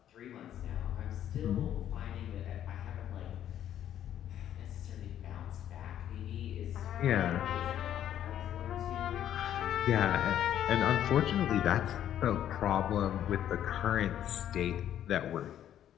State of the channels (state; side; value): quieter; right; 10.8 dB